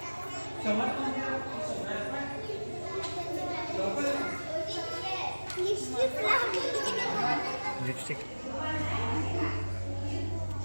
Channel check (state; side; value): inverted; both; correlation -1.00